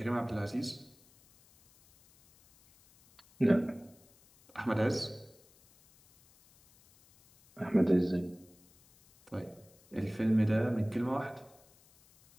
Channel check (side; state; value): left; noise; hiss, 29 dB below the sound